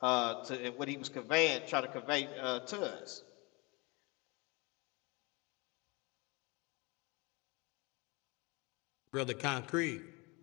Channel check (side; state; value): right; quieter; 27.1 dB